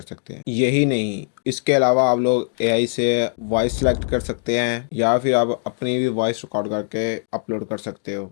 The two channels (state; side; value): silent; right; digital silence